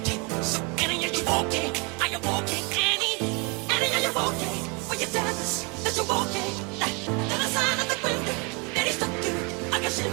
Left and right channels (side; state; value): left; quieter; 31.3 dB